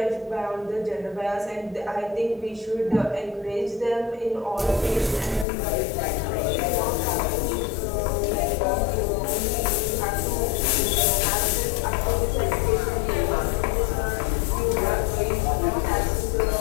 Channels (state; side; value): drops out; right; at 5.5 s